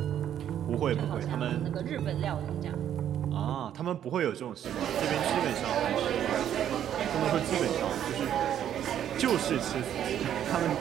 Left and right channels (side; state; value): left; quieter; 10.2 dB